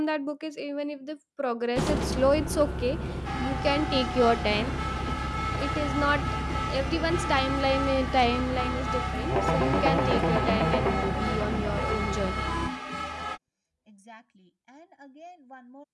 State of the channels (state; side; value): identical; both; correlation 1.00